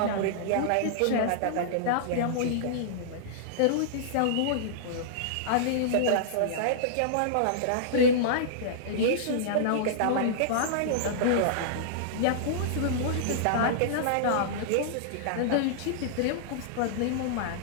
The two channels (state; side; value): different; both; correlation -0.02